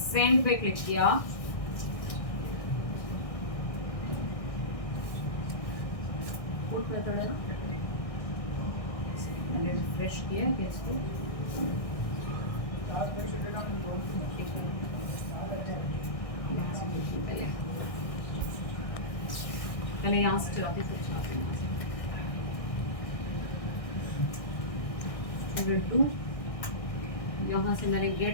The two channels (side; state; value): right; late; 1.6 ms